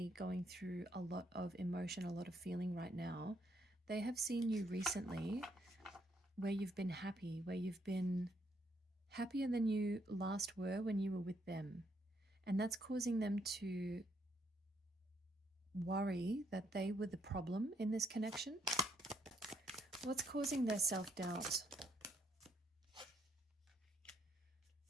going through a lot of emotion, a lot of feeling right now, they have seen you recently where you've been happy, where you've been happier than you last were when you were with them. And that's causing them to worry that they were the problem in this connection. What's causing their self-doubt?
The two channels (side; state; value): both; normal; correlation 0.73